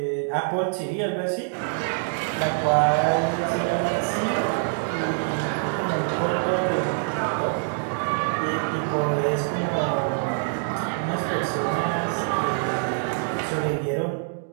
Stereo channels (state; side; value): silent; left; digital silence